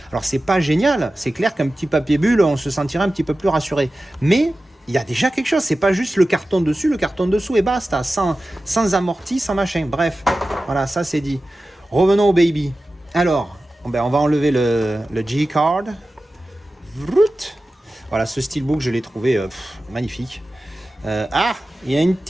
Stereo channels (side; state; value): both; normal; correlation 0.95